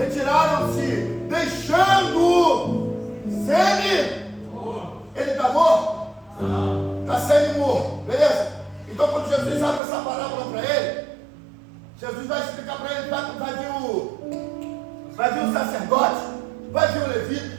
deixando semi-morto. Ele está morto? Está semi-morto, beleza? Então quando Jesus abre essa parábola para ele, Jesus vai explicar para ele: vai vir o sacerdote, vai vir o levita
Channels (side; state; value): left; drops out; at 9.8 s